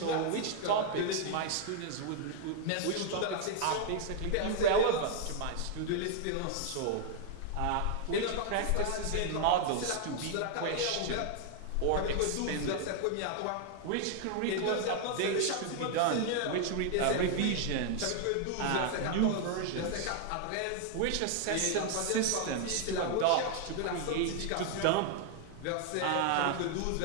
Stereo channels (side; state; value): both; different; correlation 0.00